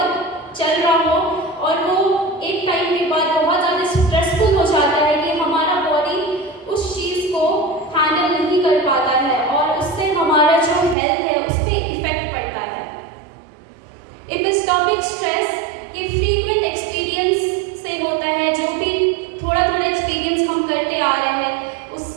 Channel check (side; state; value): left; drops out; at 11.0 s